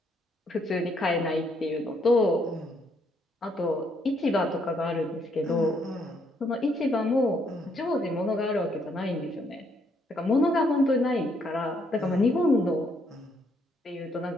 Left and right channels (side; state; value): both; normal; correlation 0.72